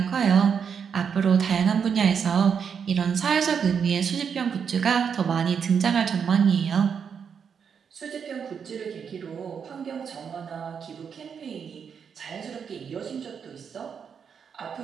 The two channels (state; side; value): quieter; left; 6.9 dB